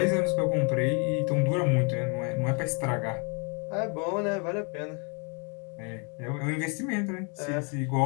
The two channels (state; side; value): quieter; right; 36.1 dB